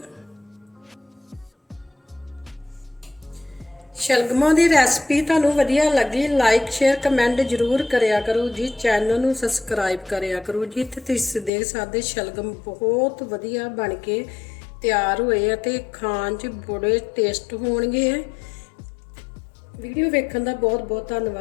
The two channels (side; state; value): right; drops out; at 11.5 s